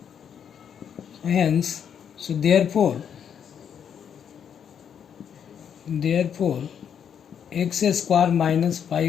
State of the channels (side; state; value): right; quieter; 8.1 dB